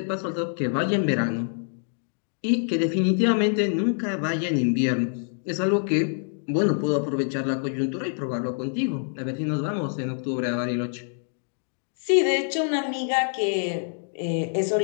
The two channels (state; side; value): silent; right; digital silence